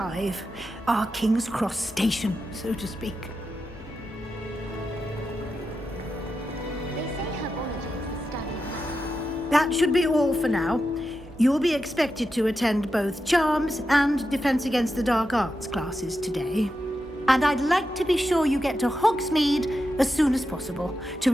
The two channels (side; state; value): both; normal; correlation 0.89